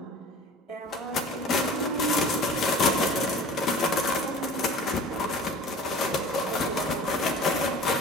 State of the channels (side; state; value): both; normal; correlation 0.42